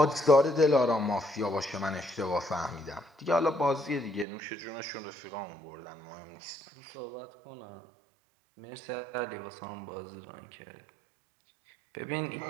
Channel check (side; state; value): left; drops out; at 4.2 s